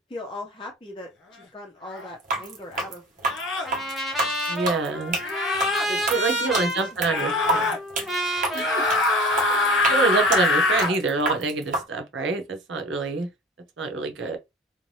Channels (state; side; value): normal; both; correlation 0.39